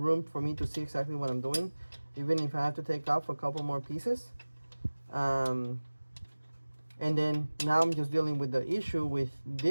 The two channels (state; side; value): inverted; both; correlation -1.00